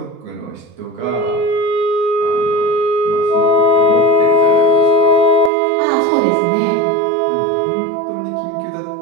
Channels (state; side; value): drops out; left; at 5.5 s